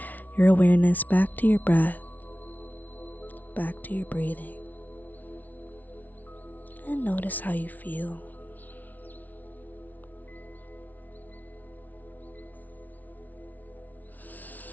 your awareness back to your breath, back to your breathing, and notice how you feel.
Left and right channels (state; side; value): late; right; 0.078 ms